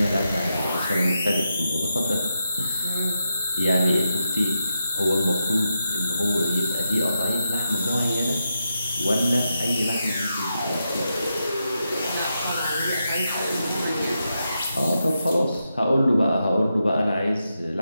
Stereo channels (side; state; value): both; inverted; correlation -0.86